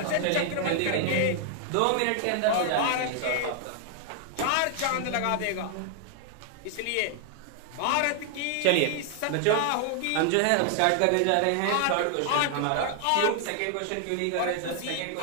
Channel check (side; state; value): both; different; correlation 0.00